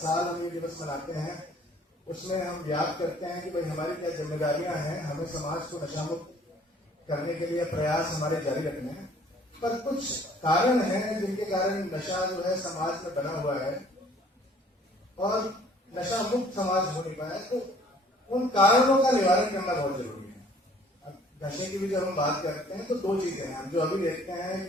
हम ये दिवस मनाते हैं। उसमें हम याद करते हैं कि भाई हमारी क्या जिम्मेदारियां हैं, हमें समाज को नशा मुक्त करने के लिए प्रयास हमारे जारी रखने हैं। पर कुछ कारण हैं जिनके कारण नशा जो है समाज में बना हुआ है और नशा मुक्त समाज हो नहीं पाया। तो उन कारणों का निवारण करना बहुत जरूरी है। अब नशे की भी जब हम बात करते हैं तो दो चीजें हैं हम जो अभी देखते हैं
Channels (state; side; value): normal; both; correlation 0.56